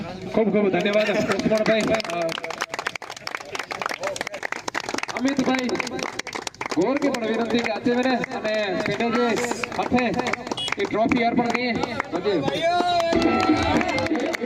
ખૂબ ખૂબ ધન્યવાદ લક્ષ્મણભાઈ. અમિતભાઈ ગોર કે પણ વિનંતી કે આજે મેને અને પેટે જે હાથે એ ટ્રોફી અર્પણ કરીએ બધે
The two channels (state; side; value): identical; both; correlation 1.00